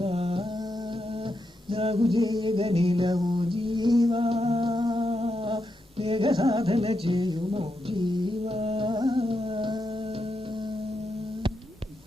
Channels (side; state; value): both; normal; correlation 0.84